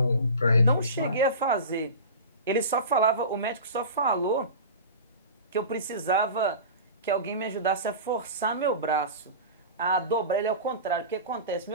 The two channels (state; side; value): inverted; both; correlation -0.33